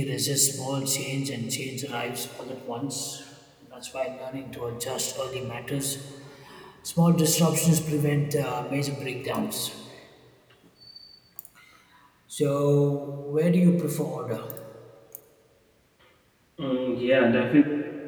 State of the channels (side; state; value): both; identical; correlation 1.00